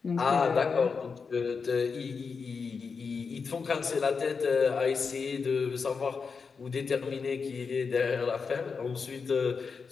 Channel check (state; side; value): quieter; right; 5.3 dB